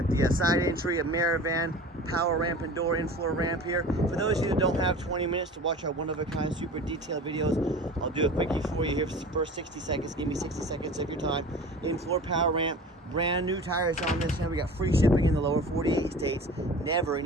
the side entry, a mirror van, power ramp and door, in-floor ramp here. For those of you that don't have 20 minutes to watch our one-of-a-kind super detailed videos, I'll do a quickie for you here for the first 60 seconds. Give me 60 seconds of your time. In-floor power ramp, brand new tires on this, and we got free shipping in the lower 48 states. Never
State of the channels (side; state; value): both; normal; correlation 0.38